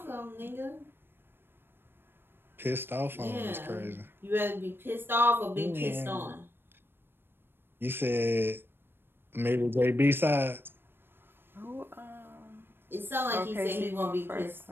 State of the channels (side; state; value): left; late; 0.10 ms